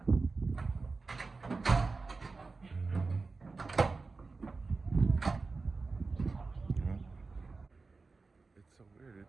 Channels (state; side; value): quieter; left; 3.9 dB